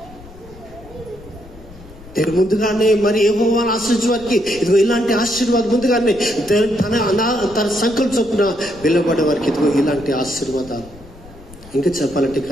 దేవుడు ముందుగానే మరి యెహోవాను ఆశ్రయించే వారికి ఇదిగో ఇలాంటి ఆశీర్వాదం ముందుగానే తన సంకల్ప చొప్పున వెళ్ళబడే వారికి ఇదిగో ఇలాంటి ఆశీర్వాదాలు. ఇంకా చెప్పాలంటే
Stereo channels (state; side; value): noise; left; rumble, 20 dB below the sound